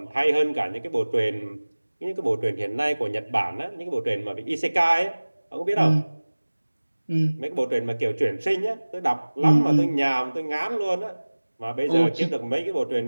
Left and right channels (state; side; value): inverted; both; correlation -1.00